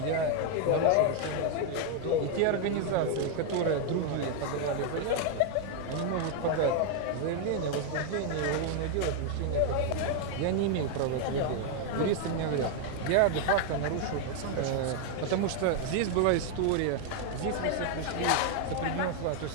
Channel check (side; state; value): both; different; correlation 0.00